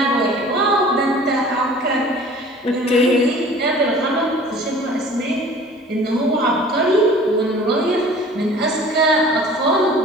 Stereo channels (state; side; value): normal; both; correlation 0.47